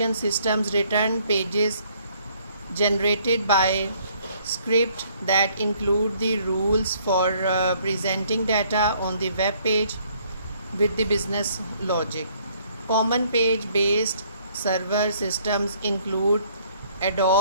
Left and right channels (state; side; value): inverted; both; correlation -0.63